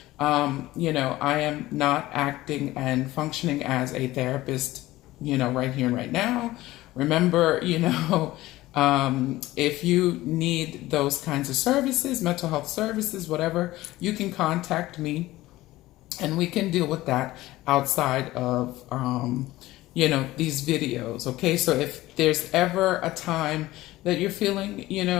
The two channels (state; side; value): quieter; right; 17.2 dB